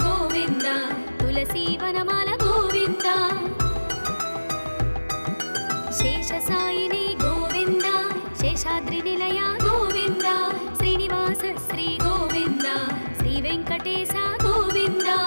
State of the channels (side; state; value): both; inverted; correlation -1.00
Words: गोविन्द तुलसीवनमाल गोविन्द शेषसायिनी गोविन्द शेषाद्रिनिलय गोविन्द श्रीनिवास श्री गोविन्द श्रीवेङ्कटेश गोविन्द